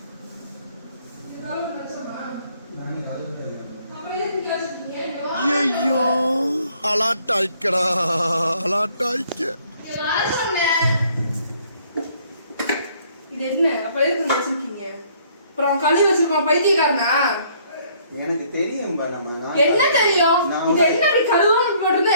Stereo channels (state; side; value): inverted; both; correlation -0.62